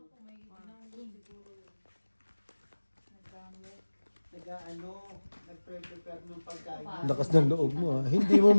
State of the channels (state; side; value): inverted; both; correlation -1.00